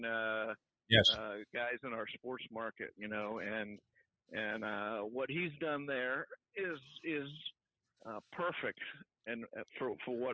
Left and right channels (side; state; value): both; identical; correlation 1.00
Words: guys in our sports market, and what he's done there is perfect, and for